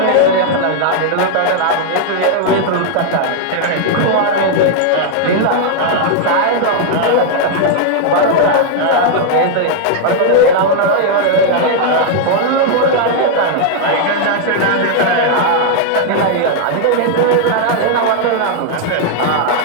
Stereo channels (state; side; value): different; both; correlation 0.00